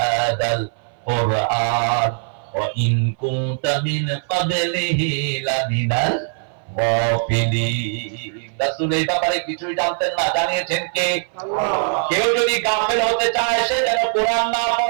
কুরআন ওয়া ইন কুনতা মিন ক্বাবলিহি লামিনাল গাফিলিন। রাসূল এই ব্যাপারে কিছুই জানতেন না, জানিয়েছেন কে? আল্লাহ। কেউ যদি গাফেল হতে চায় সে যেন কোরআন না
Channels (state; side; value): silent; left; 58 dB below the other